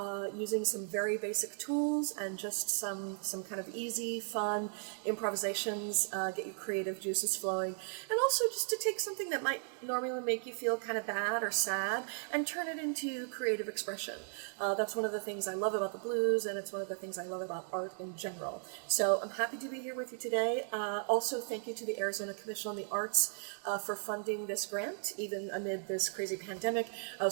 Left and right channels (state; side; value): silent; left; 54 dB below the other